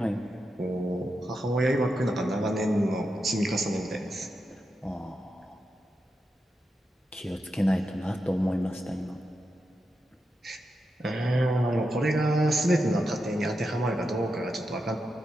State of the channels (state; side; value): normal; both; correlation 0.87